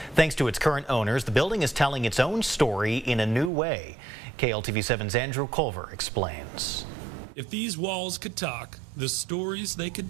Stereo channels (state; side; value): drops out; left; at 3.5 s